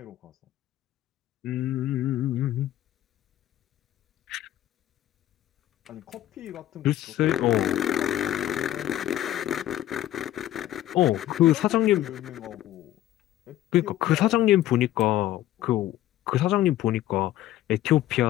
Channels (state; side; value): quieter; right; 13.5 dB